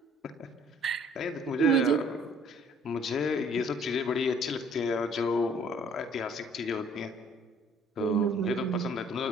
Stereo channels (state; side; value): normal; both; correlation 0.57